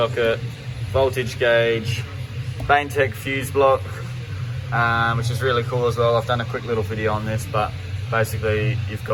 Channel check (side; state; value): both; identical; correlation 1.00